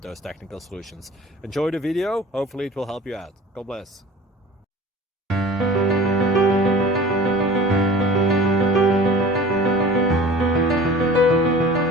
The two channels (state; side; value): normal; both; correlation 0.41